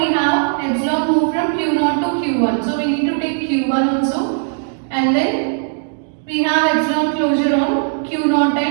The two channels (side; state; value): left; silent; digital silence